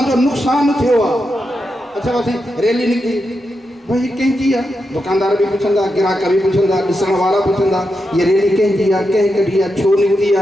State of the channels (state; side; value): normal; both; correlation 0.87